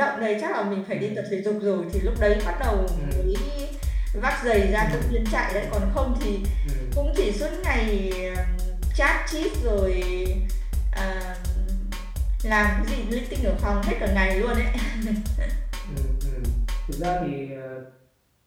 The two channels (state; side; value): identical; both; correlation 1.00